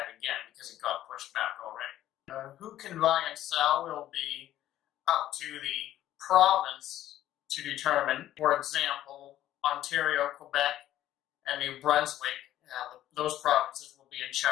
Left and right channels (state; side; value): quieter; right; 13.0 dB